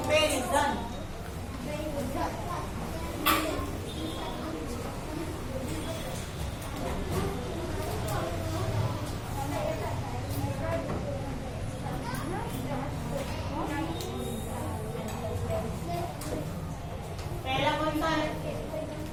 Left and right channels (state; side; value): identical; both; correlation 1.00